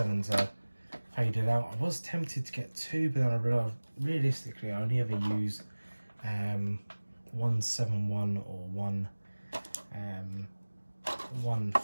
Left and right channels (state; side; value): inverted; both; correlation -1.00